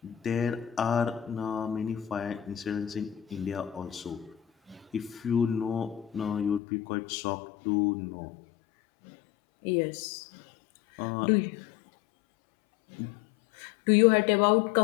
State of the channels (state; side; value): drops out; right; at 6.6 s